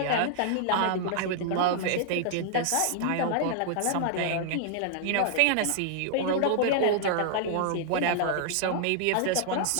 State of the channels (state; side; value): different; both; correlation 0.00